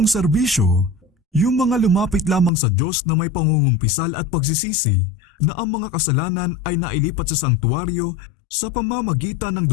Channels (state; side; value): drops out; right; at 2.5 s